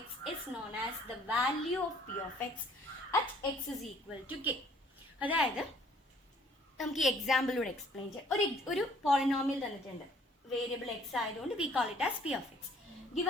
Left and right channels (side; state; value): both; normal; correlation 0.59